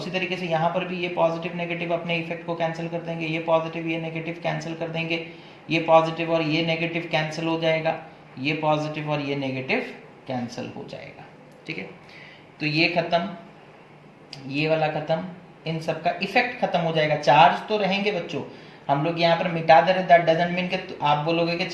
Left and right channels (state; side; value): identical; both; correlation 1.00